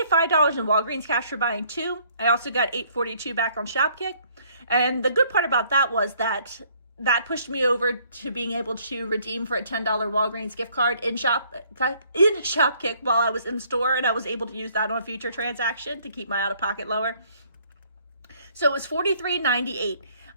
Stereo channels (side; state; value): both; inverted; correlation -0.62